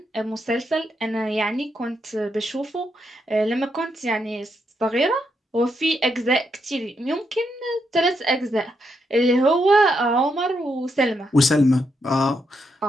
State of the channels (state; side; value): normal; both; correlation 0.80